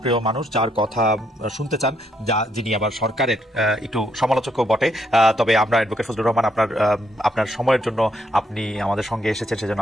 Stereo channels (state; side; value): normal; both; correlation 0.74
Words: মানুষ, যার কথা শুনতে চান, যিনি আবার সরকারের একটু সমালোচকও বটে। তবে আমরা অ্যাডভোকেট ফজলুর রহমান, আপনার সময়ের জন্য আপনি আমাদের সঙ্গে এসেছেন, সেজন্য